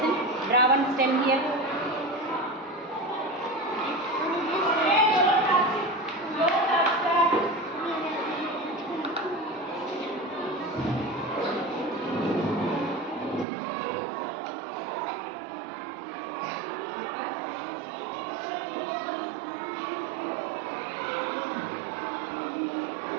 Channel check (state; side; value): drops out; left; at 13.5 s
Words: draw one stem here.